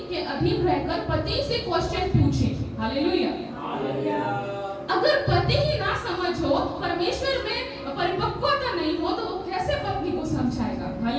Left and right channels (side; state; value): both; identical; correlation 1.00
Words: के अधीन रहकर पति से क्वेश्चन पूछे। हालेलुया। अगर पति ही ना समझ हो, परमेश्वर में परिपक्वता नहीं हो, तो वो कैसे पत्नी को समझाएगा?